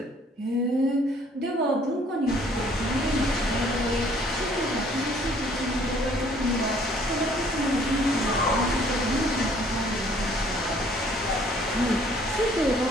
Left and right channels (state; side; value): normal; both; correlation 0.59